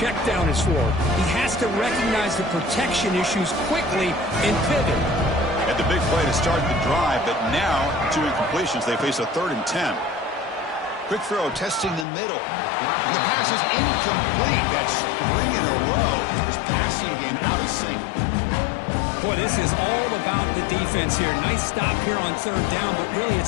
down is for. He has to recognize the protection issues quickly and pivot. Had the big play to start the drive, but now 2 incompletions. They face a 3rd and 10. Quick throw, testing the middle. And the pass is incomplete. That's 3 in a row. His passing game out of sync. Boy, this is all about the defense here. Nice stop here on third down, but really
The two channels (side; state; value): right; drops out; at 12.1 s